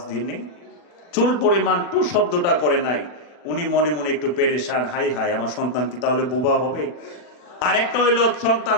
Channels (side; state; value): right; late; 40 ms